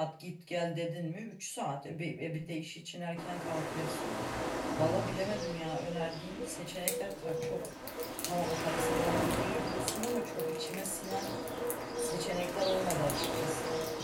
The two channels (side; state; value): both; identical; correlation 1.00